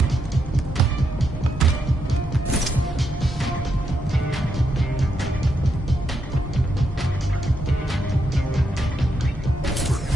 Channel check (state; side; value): normal; both; correlation 0.81